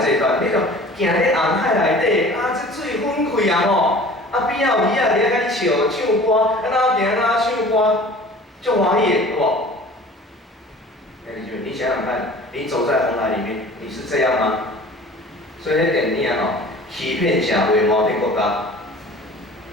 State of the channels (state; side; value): normal; both; correlation 0.45